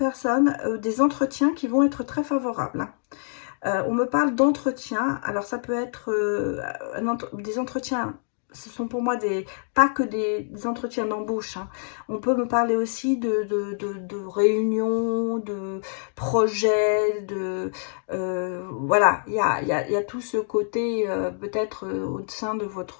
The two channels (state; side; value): silent; right; digital silence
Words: des entretiens qui vont être très favorables, hein. On me parle d'entretien. Alors, ça peut être des entretiens. Ce sont pour moi pas que des entretiens d'embauche, hein. On peut me parler aussi de réunions, de projets, voilà, il y a tout ce côté, peut-être au sein de